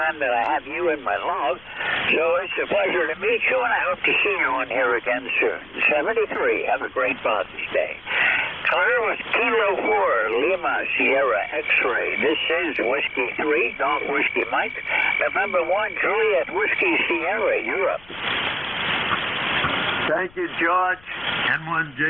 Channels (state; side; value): noise; left; rumble, 25 dB below the sound